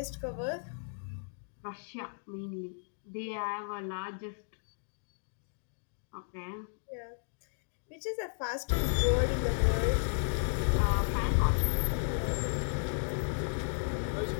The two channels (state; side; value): silent; right; digital silence